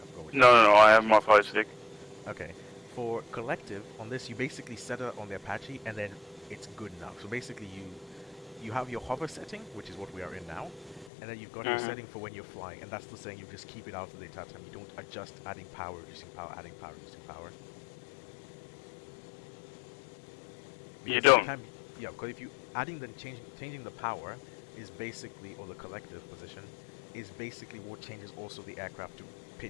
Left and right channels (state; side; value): drops out; right; at 11.1 s